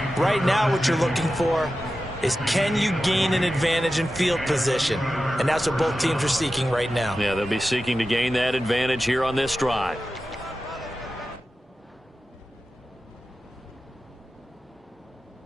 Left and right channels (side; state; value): both; normal; correlation 0.93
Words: Right now what you're looking for is, can you gain an advantage in field position? And that's what both teams are seeking right now. Yeah, they'll be seeking to gain that advantage here on this drive.